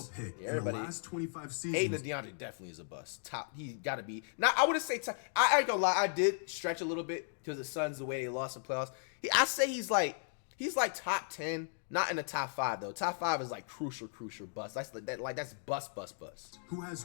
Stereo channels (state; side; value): silent; right; digital silence